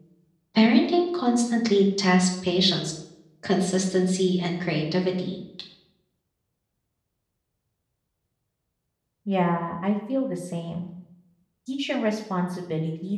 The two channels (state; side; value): identical; both; correlation 1.00